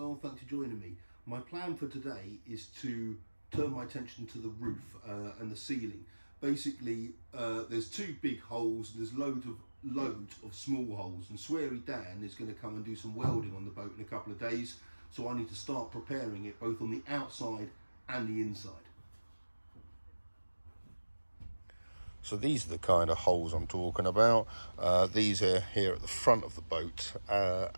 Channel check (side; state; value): both; inverted; correlation -1.00